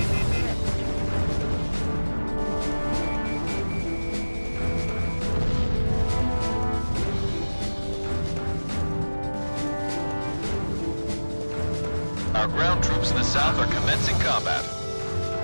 Our ground troops in the south are commencing combat.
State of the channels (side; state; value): both; inverted; correlation -1.00